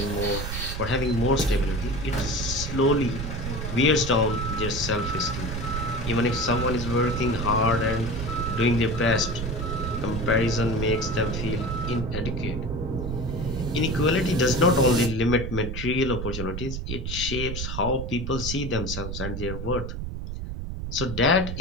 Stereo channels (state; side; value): noise; right; rumble, 5 dB below the sound